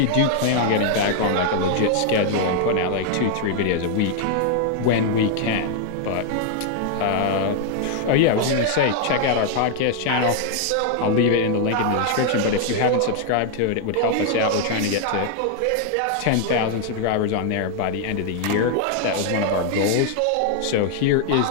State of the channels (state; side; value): different; both; correlation 0.00